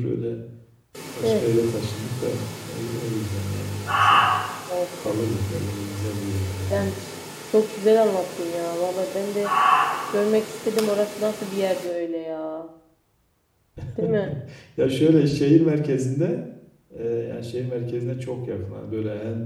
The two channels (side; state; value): both; identical; correlation 1.00